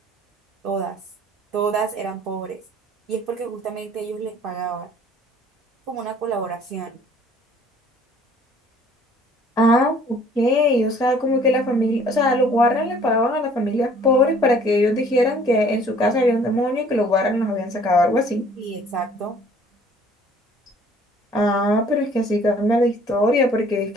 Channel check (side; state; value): both; normal; correlation 0.55